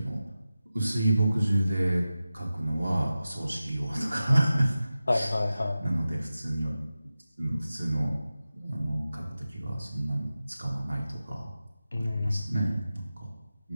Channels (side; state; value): both; inverted; correlation -0.94